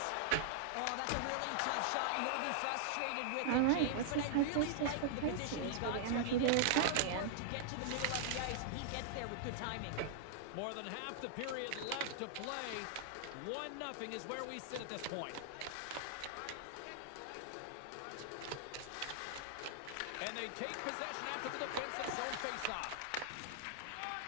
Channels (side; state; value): both; different; correlation -0.01